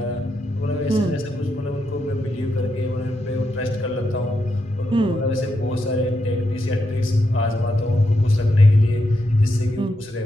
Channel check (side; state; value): both; normal; correlation 0.83